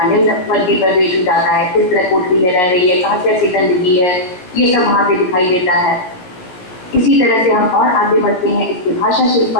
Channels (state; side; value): late; right; 17 ms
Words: निम्न वर्गीय परिवेश हो जाता है, किस तरह कोठरी में रह रही है, कहाँ कैसी गंदगी है, ये सब वहाँ पे दिखाई देता है। इसी तरह से हम और आगे बढ़ते हैं, इसके भाषा शिल्प